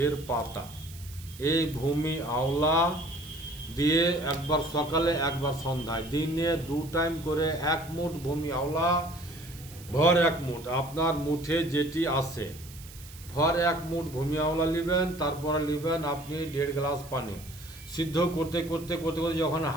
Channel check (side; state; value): right; noise; hiss, 18 dB below the sound